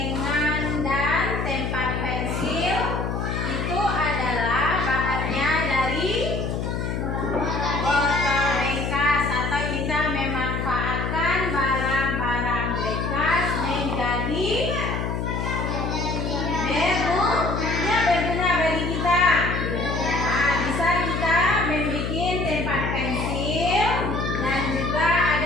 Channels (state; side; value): noise; left; hum, 2 dB below the sound